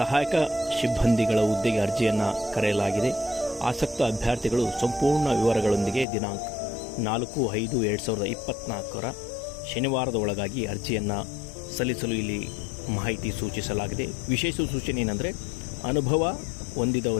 ಸಿಬ್ಬಂದಿಗಳ ಹುದ್ದೆಗೆ ಅರ್ಜಿಯನ್ನು ಕರೆಯಲಾಗಿದೆ. ಆಸಕ್ತ ಅಭ್ಯರ್ಥಿಗಳು ಸಂಪೂರ್ಣ ವಿವರಗಳೊಂದಿಗೆ ದಿನಾಂಕ 4/5/2024 ಶನಿವಾರದ ಒಳಗಾಗಿ ಅರ್ಜಿಯನ್ನು ಸಲ್ಲಿಸಲು ಇಲ್ಲಿ ಮಾಹಿತಿ ಸೂಚಿಸಲಾಗಿದೆ. ವಿಶೇಷ ಸೂಚನೆ ಏನಂದರೆ, ಅನುಭವ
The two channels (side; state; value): right; drops out; at 6.1 s